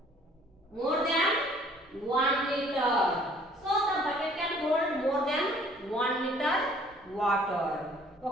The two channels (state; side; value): normal; both; correlation 0.57